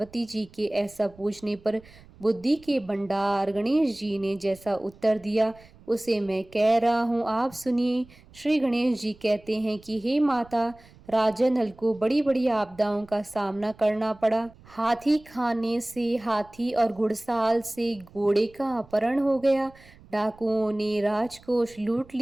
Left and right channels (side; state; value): right; noise; rumble, 24 dB below the sound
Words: जी के ऐसा पूछने पर बुद्धि के भंडार गणेश जी ने जैसा उत्तर दिया उसे मैं कह रहा हूँ, आप सुनिए। श्री गणेश जी कहते हैं कि हे माता, राजा नल को बड़ी बड़ी आपदाओं का सामना करना पड़ा। हाथी खाने से हाथी और घुड़साल से घोड़े का अपहरण हो गया। डाकुओं ने राजकोष लूट